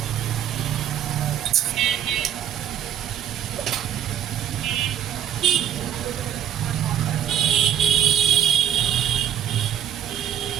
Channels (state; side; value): quieter; left; 10.0 dB